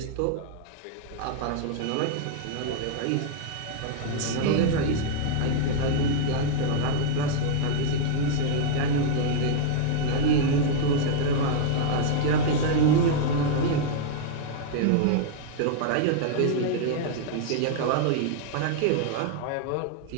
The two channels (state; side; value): different; both; correlation -0.01